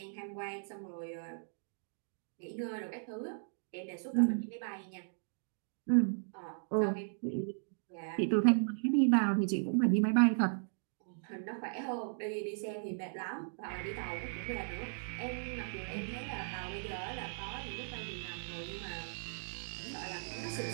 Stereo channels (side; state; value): left; silent; digital silence